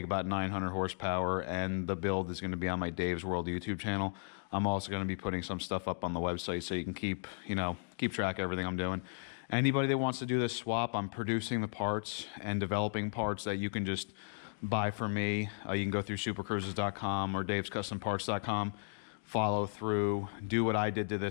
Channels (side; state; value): right; silent; digital silence